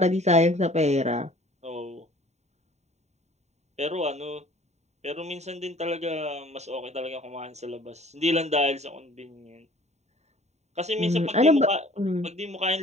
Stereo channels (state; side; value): late; left; 0.32 ms